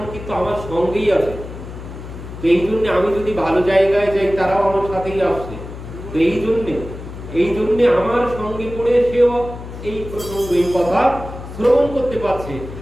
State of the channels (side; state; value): left; noise; hum, 12 dB below the sound